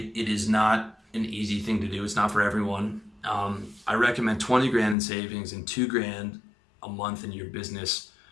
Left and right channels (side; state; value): right; drops out; at 5.0 s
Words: is not an easy thing to do. It's not for everyone. I recommend 20 grand in savings and 2 grand a month in your business